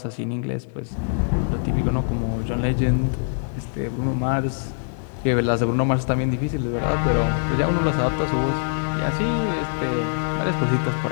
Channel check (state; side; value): silent; right; digital silence